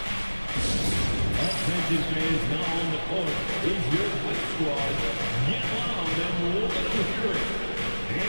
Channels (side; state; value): both; inverted; correlation -1.00